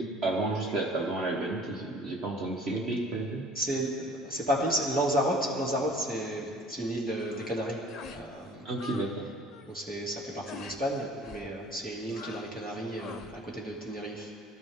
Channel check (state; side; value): normal; both; correlation 0.50